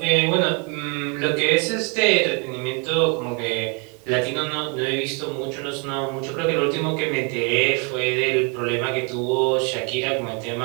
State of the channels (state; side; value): quieter; left; 35.2 dB